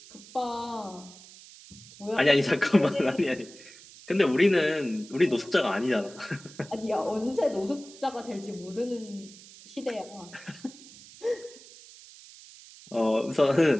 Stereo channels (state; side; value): noise; right; hiss, 20 dB below the sound